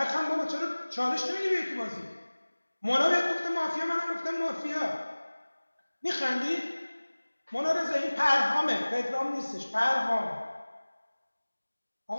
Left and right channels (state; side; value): inverted; both; correlation -1.00